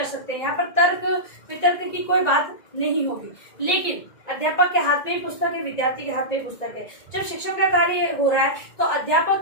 सकते, यहाँ पर तर्क वितर्क की कोई बात नहीं होगी। लेकिन अध्यापक के हाथ में ही पुस्तक है, विद्यार्थी के हाथ में ही पुस्तक है। जब शिक्षण का कार्य हो रहा है तो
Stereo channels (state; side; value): late; right; 1.9 ms